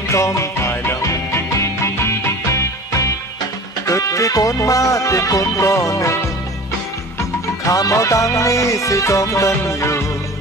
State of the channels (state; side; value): normal; both; correlation 0.39